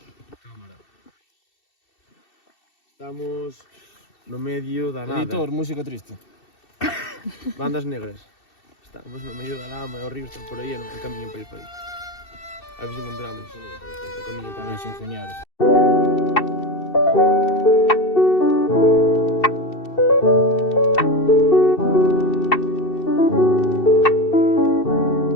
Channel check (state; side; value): late; right; 2.7 ms